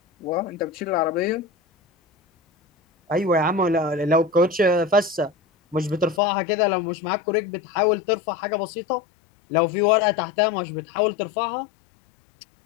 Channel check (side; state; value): right; drops out; at 6.2 s